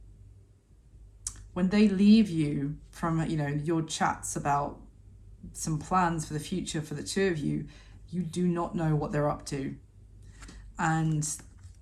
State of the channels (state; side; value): identical; both; correlation 1.00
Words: When they leave you from, you know, your chats about some plans for the future for the two of you, you do not know what they're up to. And